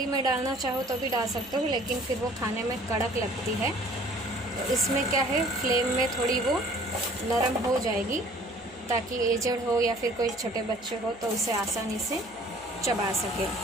में डालना चाहो तो भी डाल सकते हो, लेकिन फिर वो खाने में कड़क लगती है। तो इसमें क्या है, फ्लेम में थोड़ी वो नरम हो जाएगी ताकि एजड हो या फिर कोई छोटे बच्चे हो तो उसे आसानी से चबा सके।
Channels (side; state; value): right; noise; hum, 26 dB below the sound